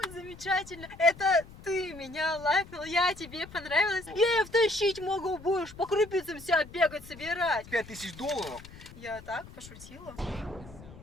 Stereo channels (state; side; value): noise; left; rumble, 18 dB below the sound